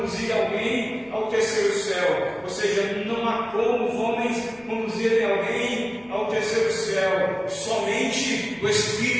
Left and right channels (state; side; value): noise; left; rumble, 29 dB below the sound